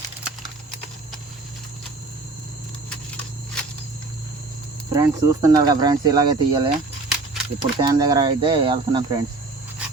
ఫ్రెండ్స్ చూస్తున్నారు కదా ఫ్రెండ్స్, ఇలాగే తీయాలి. ఇప్పుడు తేనె దగ్గర అయితే వెళ్తున్నాం ఫ్రెండ్స్.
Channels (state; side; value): quieter; left; 3.5 dB